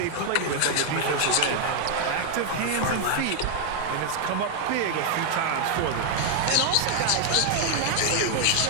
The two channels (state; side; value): different; both; correlation 0.00